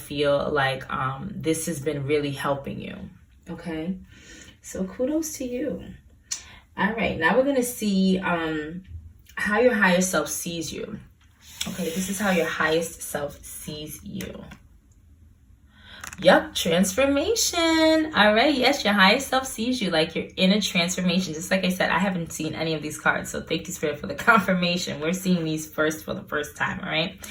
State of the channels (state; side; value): identical; both; correlation 1.00